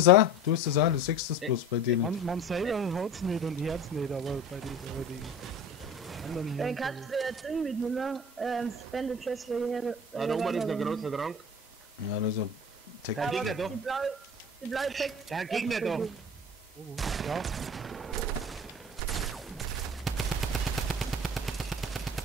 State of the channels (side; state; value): both; normal; correlation 0.38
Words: auch, du sechst das bloß bei denen. Man selber hat's nicht und hört's nicht, aber bei den anderen Dann hier. kannst du ja Ding mitnehmen, Spende Chest für hier. Ah, da oben ist ein großer Trank. Ja, das ist ein Tech. Der Gegner da. Die blaue Tech. Der Gegner da. Ja,